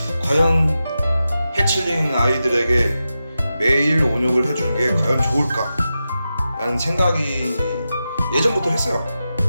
과연 해칠링 아이들에게 매일 온역을 해주는 게 과연 좋을까 라는 생각이 예전부터 했어요.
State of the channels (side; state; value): both; inverted; correlation -0.91